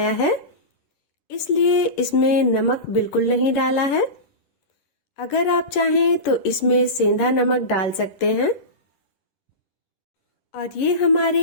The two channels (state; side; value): late; right; 11 ms